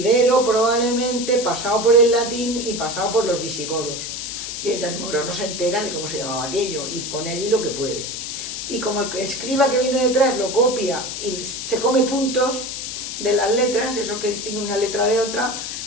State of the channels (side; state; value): left; noise; hiss, 6 dB below the sound